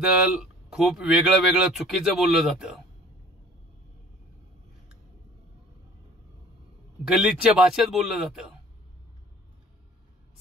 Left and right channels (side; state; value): both; normal; correlation 0.49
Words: खूप वेगळं वेगळं चुकीचं बोललं जातं. गलिच्छ भाषेत बोललं जातं.